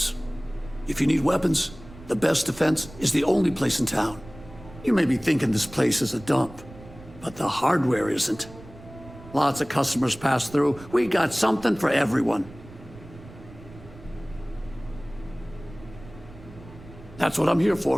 If you need weapons, the best defense is the only place in town. You may be thinking this place is a dump, but the hardware isn't. Lots of customers pass through. We got something for everyone. That's what I'm here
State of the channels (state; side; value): noise; right; rumble, 18 dB below the sound